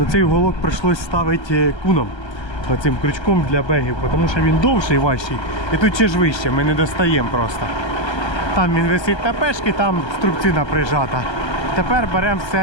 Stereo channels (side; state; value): right; late; 1.3 ms